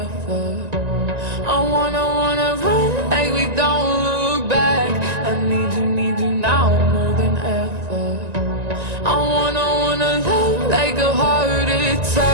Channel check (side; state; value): left; late; 1.9 ms